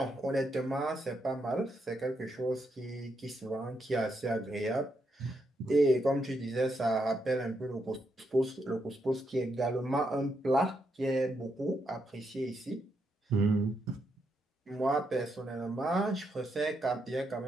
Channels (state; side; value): normal; both; correlation 0.80